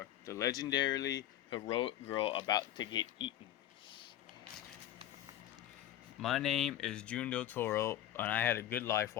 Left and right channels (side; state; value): right; quieter; 12.2 dB